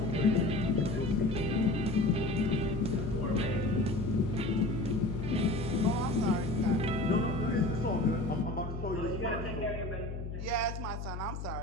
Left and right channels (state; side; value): noise; left; hum, 6 dB below the sound